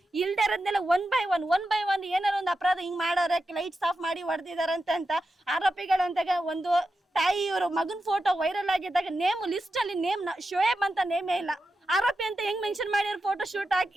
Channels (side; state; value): both; normal; correlation 0.90